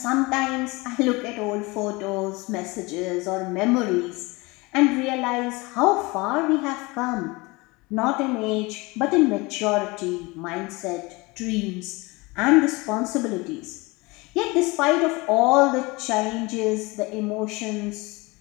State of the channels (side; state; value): right; quieter; 24.4 dB